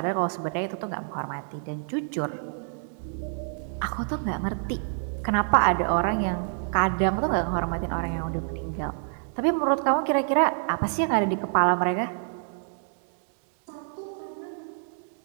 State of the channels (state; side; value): silent; left; digital silence